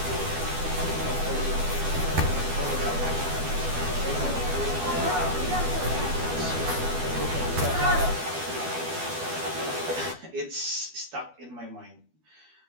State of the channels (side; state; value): left; late; 12 ms